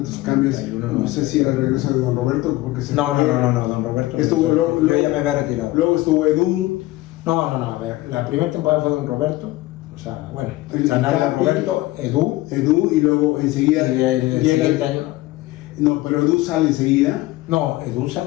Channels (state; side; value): quieter; right; 18.2 dB